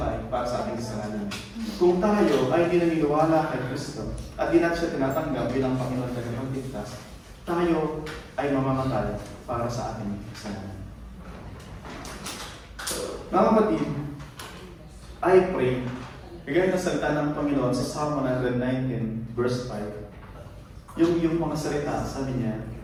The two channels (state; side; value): identical; both; correlation 1.00